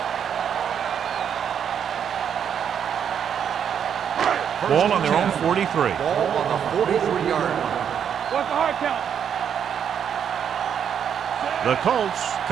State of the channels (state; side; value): quieter; left; 8.3 dB